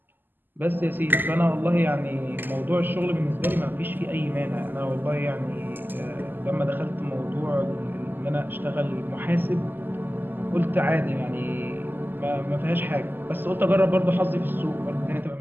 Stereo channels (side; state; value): left; late; 0.091 ms